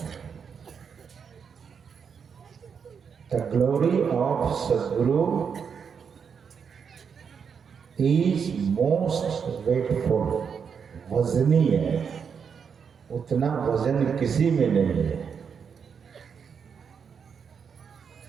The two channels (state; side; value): quieter; left; 6.6 dB